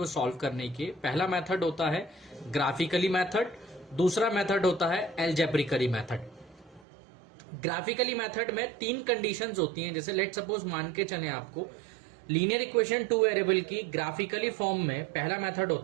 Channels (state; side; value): drops out; left; at 6.9 s